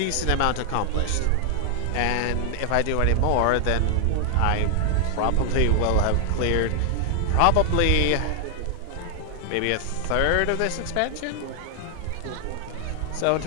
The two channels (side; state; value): both; different; correlation 0.00